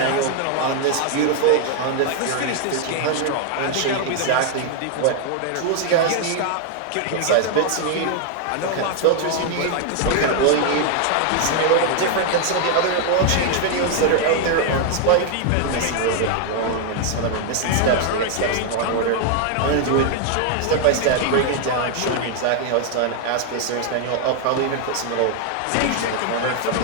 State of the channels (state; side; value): different; both; correlation 0.00